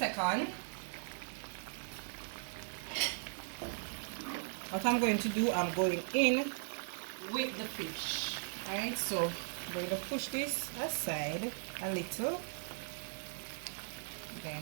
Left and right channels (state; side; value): silent; left; digital silence